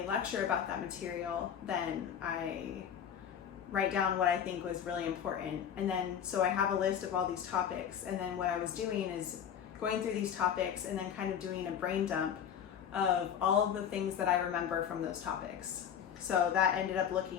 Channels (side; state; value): right; quieter; 8.6 dB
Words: lecture about that material, then I write down what I think was really important. And then so I have a list of all these topics, and then what I was doing is going through these topics and then kind of doing a brain dump of all of the things that I remember from those topics. So that ended up